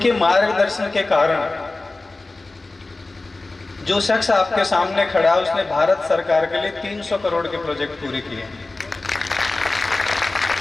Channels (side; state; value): right; quieter; 3.2 dB